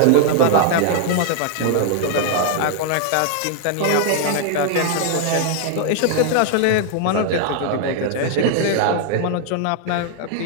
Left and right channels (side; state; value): both; different; correlation 0.00